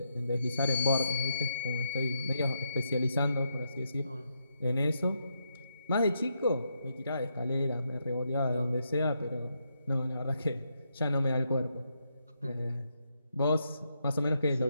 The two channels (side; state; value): both; inverted; correlation -0.80